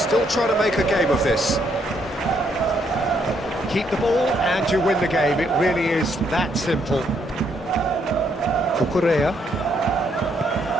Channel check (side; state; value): both; normal; correlation 0.73